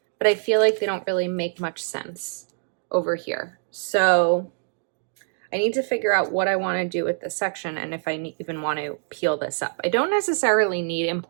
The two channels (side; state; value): left; silent; 59 dB below the other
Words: but I feel like they don't really make much sense over here. So I need to figure out what I want to do with this section and if I even want to peel this up. I don't necessarily need